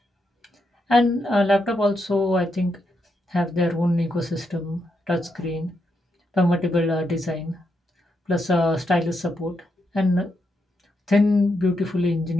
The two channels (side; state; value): both; normal; correlation 0.81